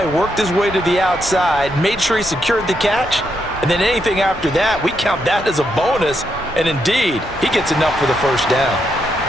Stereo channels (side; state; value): both; normal; correlation 0.80